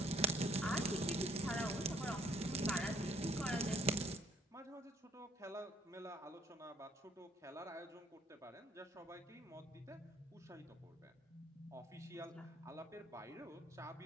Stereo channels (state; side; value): normal; both; correlation 0.61